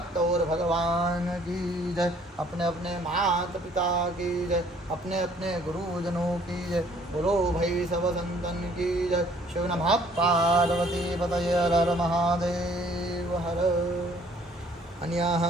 और भगवान की जय, अपने अपने माता पिता की जय, अपने अपने गुरुजनों की जय। बोलो भाई सब संतन की जय। शिव नमः पार्वती पतये हर हर महादेव हर। अन्याः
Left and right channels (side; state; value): both; normal; correlation 0.60